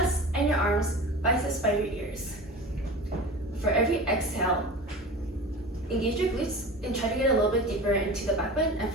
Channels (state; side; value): normal; both; correlation 0.34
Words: and your arms, biceps by your ears. For every exhale, engage your glutes and try to get a little bit deeper into the back bend. And